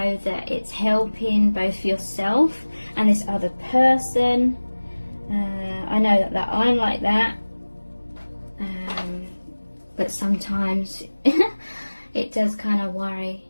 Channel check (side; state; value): both; inverted; correlation -1.00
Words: that it's helping both yourself and this other person. I know that I'm like that. But sometimes it does kind of worry